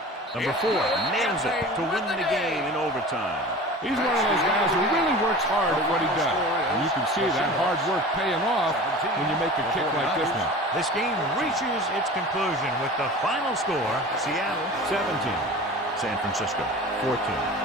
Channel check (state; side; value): normal; both; correlation 0.37